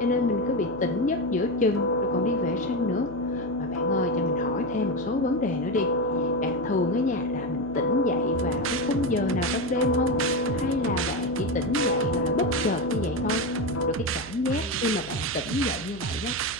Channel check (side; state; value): right; noise; hum, 16 dB below the sound